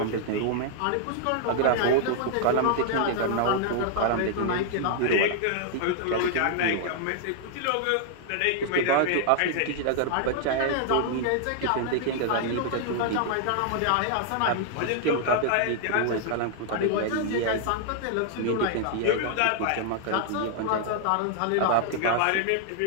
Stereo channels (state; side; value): different; both; correlation -0.01